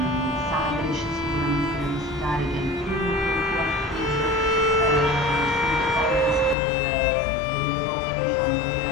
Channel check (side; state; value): right; drops out; at 6.6 s